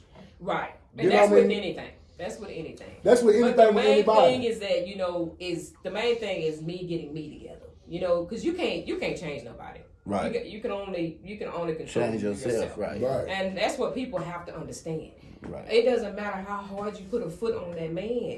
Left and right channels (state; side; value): identical; both; correlation 1.00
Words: Right. And You know that's what I with mean? anything. That's with anything. That's with anything But the with main anybody. thing is that, the main thing is me getting me together. Because you can't change nobody. Right. You can only control Change yourself, right. And that's what people have to understand. Right. It doesn't matter how hard you put a foot on that